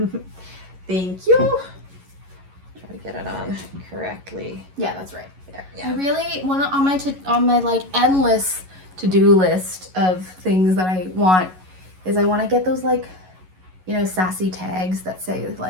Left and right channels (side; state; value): left; late; 11 ms